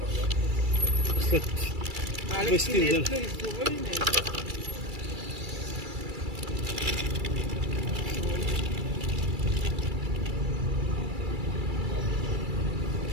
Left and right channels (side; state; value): left; late; 2.3 ms